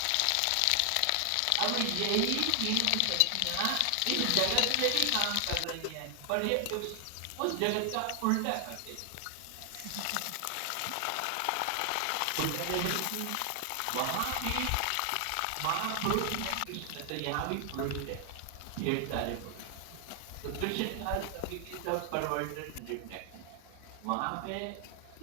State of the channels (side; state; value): both; different; correlation 0.00